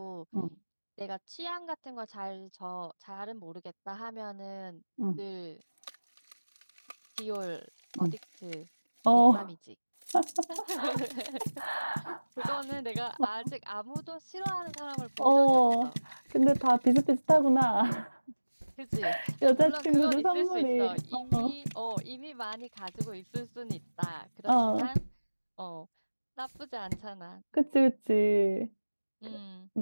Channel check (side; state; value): both; inverted; correlation -1.00